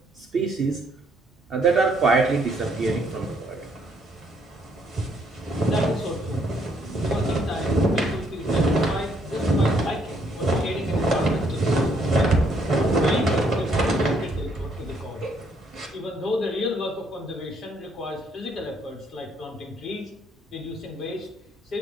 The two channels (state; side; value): normal; both; correlation 0.69